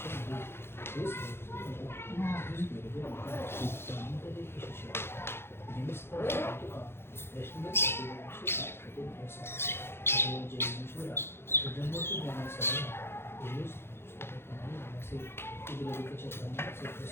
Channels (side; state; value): right; late; 0.11 ms